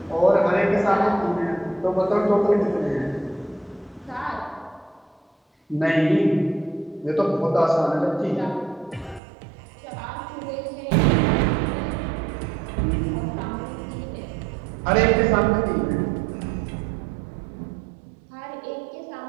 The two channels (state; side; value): drops out; left; at 9.2 s